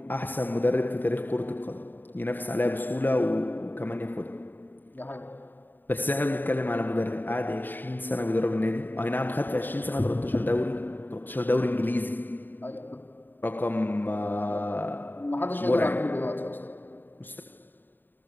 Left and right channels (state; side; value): late; right; 0.092 ms